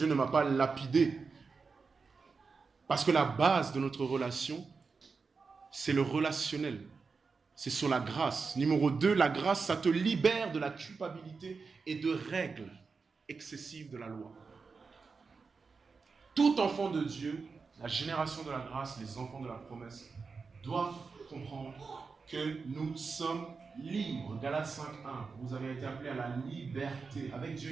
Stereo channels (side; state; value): left; quieter; 4.8 dB